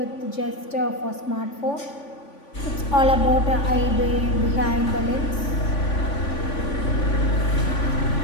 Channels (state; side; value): late; right; 3.5 ms